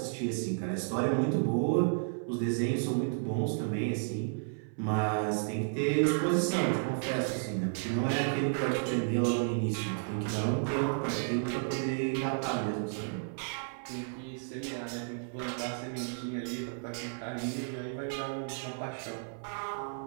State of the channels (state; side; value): silent; left; 56 dB below the other